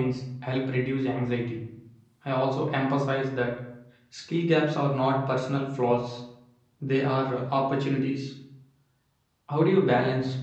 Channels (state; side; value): identical; both; correlation 1.00